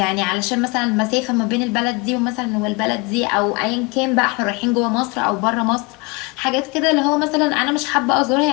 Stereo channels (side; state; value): right; quieter; 27.9 dB